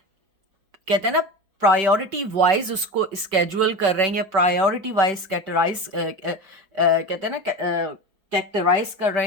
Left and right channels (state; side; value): late; left; 5.3 ms